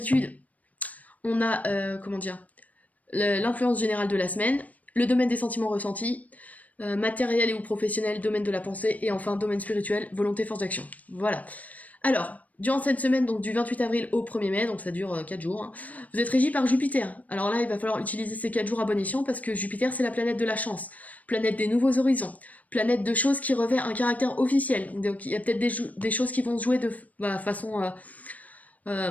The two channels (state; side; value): late; right; 0.073 ms